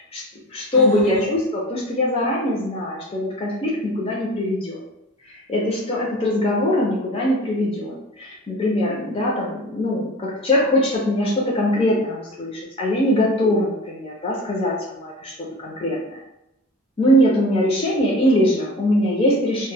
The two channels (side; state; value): both; normal; correlation 0.37